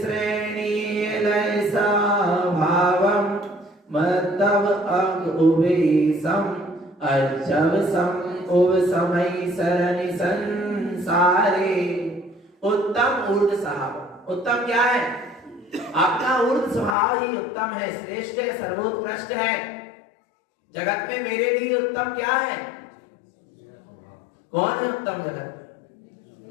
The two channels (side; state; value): right; drops out; at 16.9 s